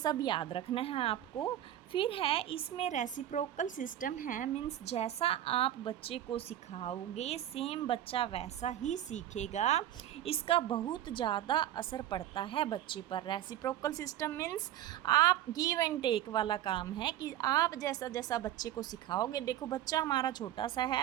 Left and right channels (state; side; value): quieter; left; 12.3 dB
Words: याद रखना है आपको। फिर है इसमें रेसिप्रोकल सिस्टम है, मीन्स जैसा आप बच्चे को सिखाओगे सेम बच्चा वैसा ही सीखेगा। इसका बहुत ज़्यादा असर पड़ता है बच्चे पर। रेसिप्रोकल सिस्टम मीन्स आप गिव एंड टेक वाला काम है कि आप जैसा जैसा बच्चे को सिखाओगे, देखो बच्चा हमारा छोटा सा